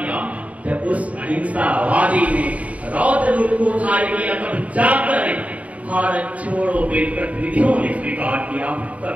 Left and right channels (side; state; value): left; late; 0.068 ms